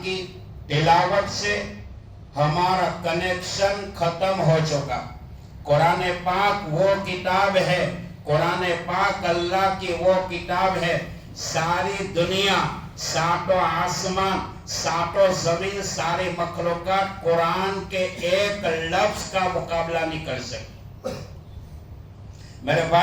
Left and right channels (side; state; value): both; identical; correlation 1.00